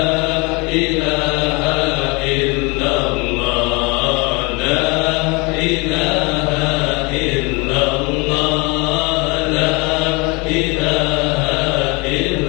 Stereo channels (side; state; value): right; quieter; 27.7 dB